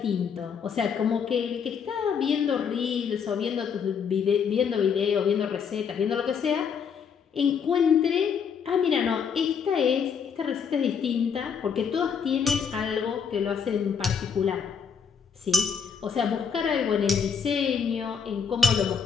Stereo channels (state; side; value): quieter; right; 6.7 dB